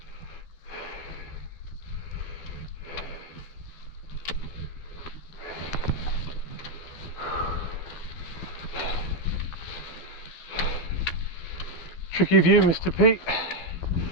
Tricky view, Mr. Pete.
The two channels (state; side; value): late; right; 13 ms